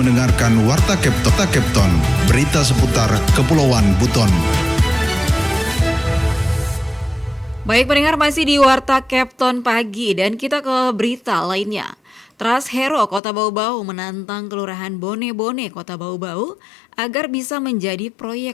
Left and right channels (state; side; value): drops out; right; at 13.2 s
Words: Warta Kepton, berita seputar Kepulauan Buton. Baik pendengar, masih di Warta Kepton pagi dan kita ke berita lainnya. Trust Hero Kota Bau-Bau menantang Kelurahan Bone-Bone Kota Bau-Bau agar bisa menjadi